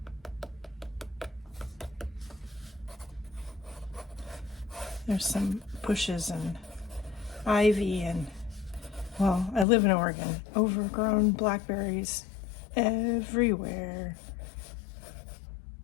There's some bushes and ivy and, well, I live in Oregon, overgrown blackberries everywhere.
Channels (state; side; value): drops out; right; at 9.7 s